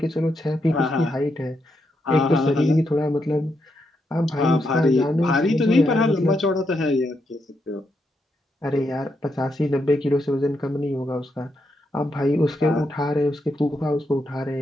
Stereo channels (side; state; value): both; normal; correlation 0.81